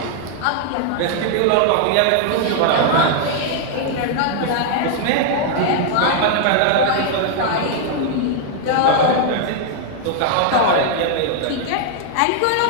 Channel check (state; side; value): different; both; correlation 0.00